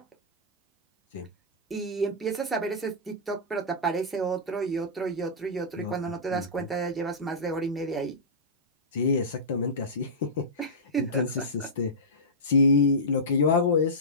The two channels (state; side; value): normal; both; correlation -0.15